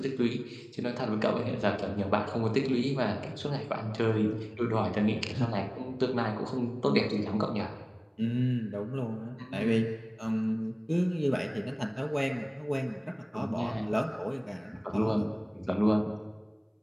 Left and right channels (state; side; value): identical; both; correlation 1.00